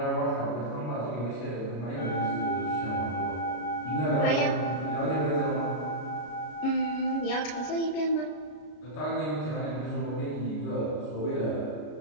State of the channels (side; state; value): right; late; 33 ms